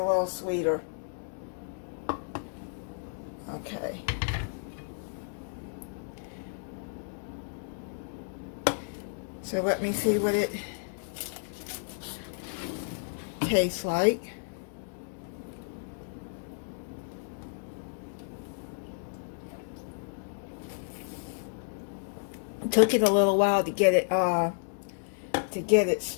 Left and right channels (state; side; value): silent; right; digital silence